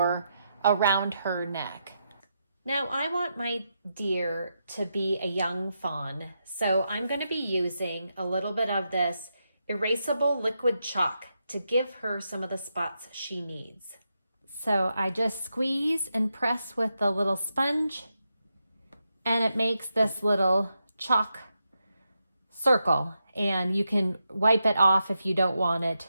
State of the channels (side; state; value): both; inverted; correlation -0.85